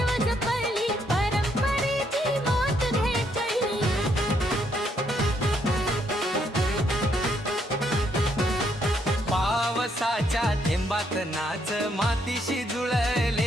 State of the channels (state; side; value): normal; both; correlation 0.73